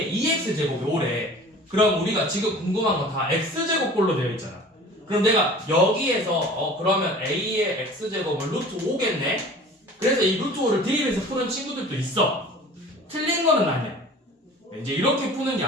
2x제곱이 5래. 그럼 우리가 지금 궁금한 건 다 x제곱꼴로 되어 있잖아. 그럼 내가 여기에서 그러면 a의 x제곱은 루트 5겠네? 그래서 이 루트 5를 대입해서 푸는 친구들도 있어. 틀린 거는 아니야. 이제 이렇게 푸는 게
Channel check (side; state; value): both; normal; correlation 0.44